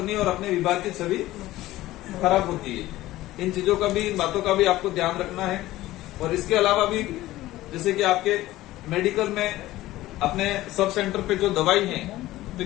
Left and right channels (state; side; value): quieter; right; 16.4 dB